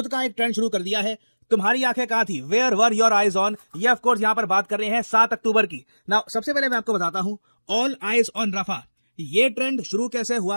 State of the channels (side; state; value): both; inverted; correlation -1.00